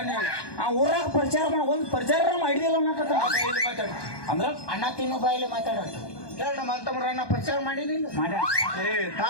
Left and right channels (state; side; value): late; right; 1.2 ms